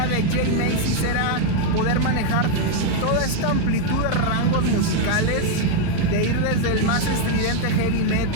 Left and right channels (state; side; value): different; both; correlation 0.00